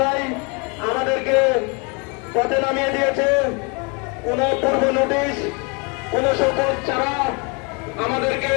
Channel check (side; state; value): right; quieter; 32.4 dB